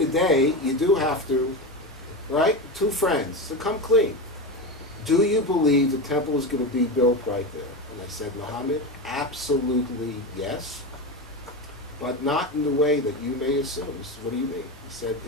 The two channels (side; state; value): both; normal; correlation 0.19